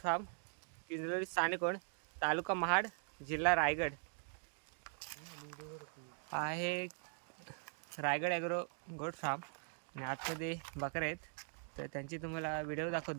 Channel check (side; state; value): left; silent; 50 dB below the other